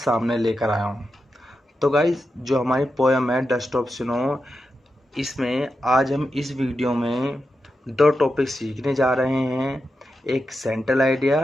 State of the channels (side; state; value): both; normal; correlation 0.89